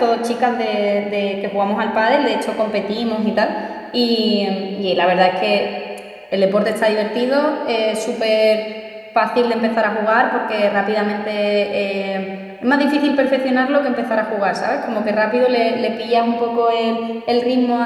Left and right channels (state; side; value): identical; both; correlation 1.00